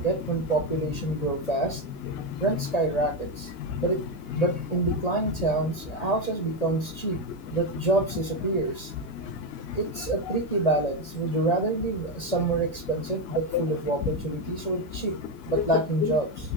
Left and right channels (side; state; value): right; late; 1.8 ms